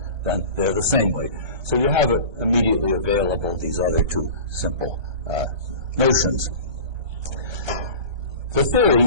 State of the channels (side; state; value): left; late; 1.3 ms